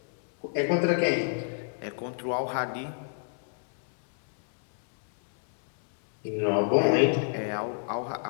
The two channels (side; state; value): right; silent; 59 dB below the other